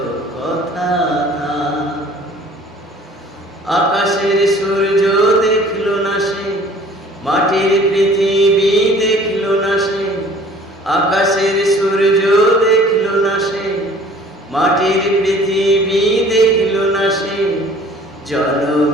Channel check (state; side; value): normal; both; correlation 0.51